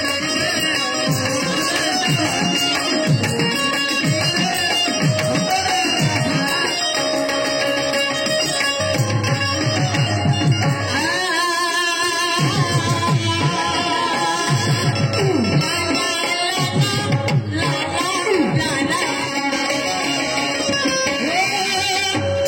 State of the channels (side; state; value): both; identical; correlation 1.00